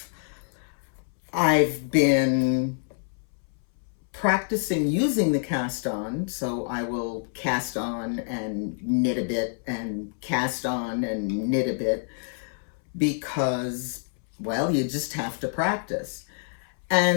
I've been practicing using the cast-on, so I will cast on and knit a bit and cast on and knit a bit because, well, you just have to practice.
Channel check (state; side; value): silent; right; 60 dB below the other